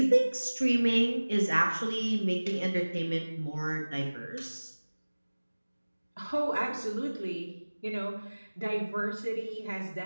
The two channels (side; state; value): both; inverted; correlation -1.00